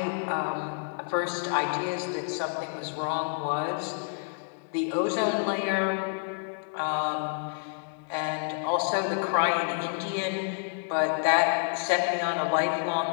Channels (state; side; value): silent; right; digital silence